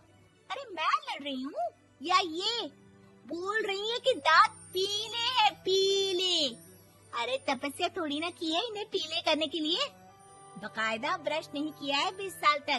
अरे मैं लड़ रही हूँ या ये बोल रही है कि दांत पीले हैं, पीले। अरे तपस्या थोड़ी ना की है इन्हें पीले करने के लिए। बकायदा ब्रश नहीं किया है 20 साल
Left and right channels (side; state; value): both; identical; correlation 1.00